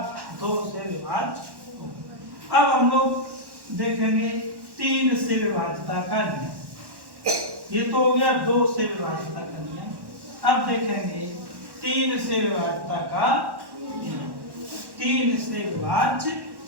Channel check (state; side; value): late; left; 1.1 ms